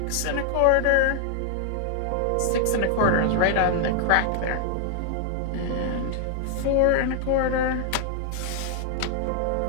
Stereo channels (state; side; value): different; both; correlation 0.00